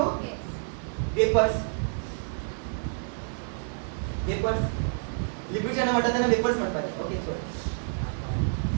vapors liquid च्या म्हणतात त्यांना वेपर्स म्हणतात okay sorry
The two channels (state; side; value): silent; left; digital silence